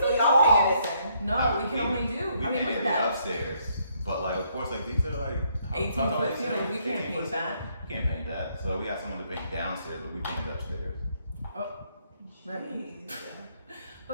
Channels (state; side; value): inverted; both; correlation -0.71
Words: did y'all y'all? paying this in? no, we can only do. We I mean, can't look do at that. upstairs, but like of course, like these are like 18-foot ceilings. We can't paint that. We can't paint that. So we got someone to paint downstairs, but we painted upstairs. Remy.